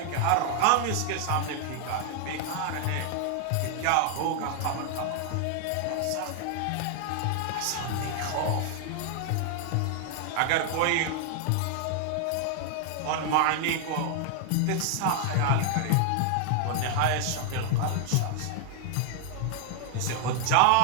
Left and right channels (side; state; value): both; different; correlation 0.00